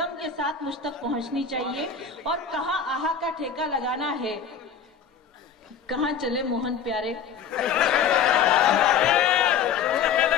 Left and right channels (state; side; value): quieter; right; 6.8 dB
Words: के साथ मुझ तक पहुंचनी चाहिए। और कहाँ आहा का ठेका लगाना है, कहाँ चले मोहन प्यारे।